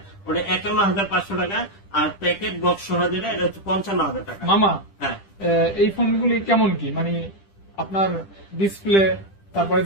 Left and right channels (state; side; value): late; right; 10 ms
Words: ওটা 51,500 টাকা। আর প্যাকেট বক্স সহ যেটা, এটা হচ্ছে 55,000 টাকা। মামা, হ্যাঁ, এই ফোনগুলি কেমন কি, মানে আপনার ডিসপ্লে, তারপরে